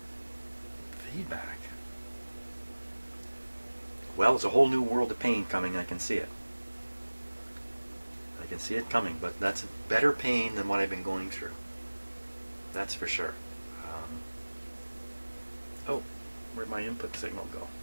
Feedback. Well, it's a whole new world of pain coming. I can see it. I can see it coming, but that's better pain than what I've been going through. That's for sure. Oh, where'd my input signal go?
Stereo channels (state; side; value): inverted; both; correlation -1.00